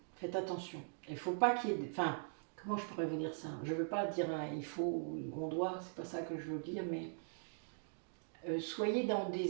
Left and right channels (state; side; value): silent; left; digital silence